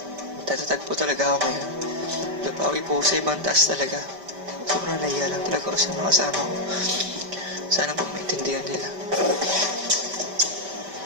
tatatag po talaga ako ngayon. Napawi po sa ibang taas talaga. Sobrang nahiya lang talaga ako sa mga kasama ko. Sana po maintindihan nila.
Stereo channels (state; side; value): late; left; 5.1 ms